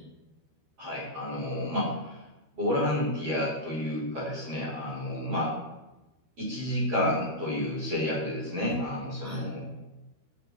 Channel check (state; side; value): late; left; 12 ms